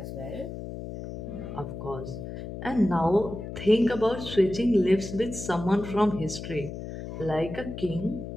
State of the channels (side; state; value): left; noise; hum, 9 dB below the sound